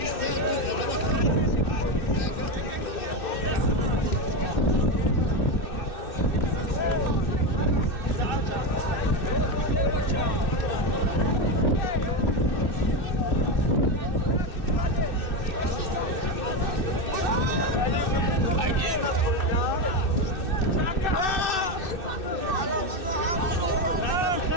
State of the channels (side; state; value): right; late; 2.6 ms